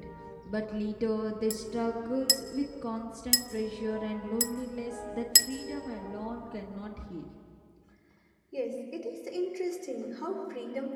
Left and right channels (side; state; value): both; identical; correlation 1.00